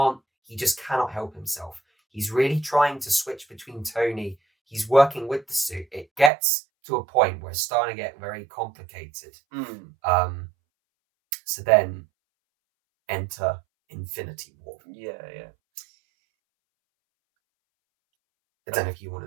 just cannot help himself. He's really trying to switch between Tony. He's working with the suit. It gets to a point where it's starting to get very complicated. So then enter Infinity War. I don't know if you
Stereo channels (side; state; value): left; drops out; at 6.3 s